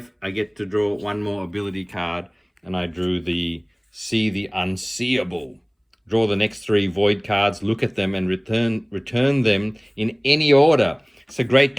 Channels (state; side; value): identical; both; correlation 1.00